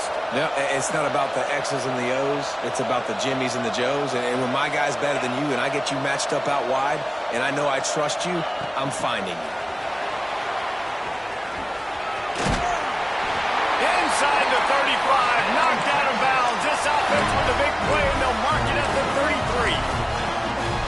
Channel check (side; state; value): both; identical; correlation 1.00